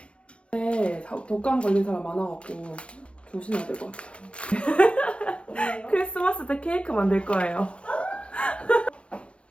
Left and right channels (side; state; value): right; late; 0.059 ms